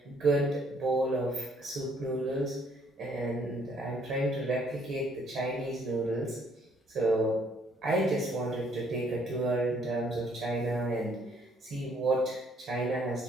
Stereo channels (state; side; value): normal; both; correlation 0.65